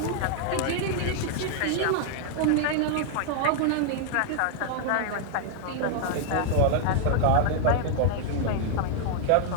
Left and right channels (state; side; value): different; both; correlation 0.00